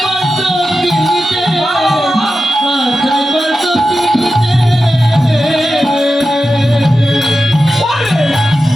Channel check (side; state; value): both; normal; correlation 0.92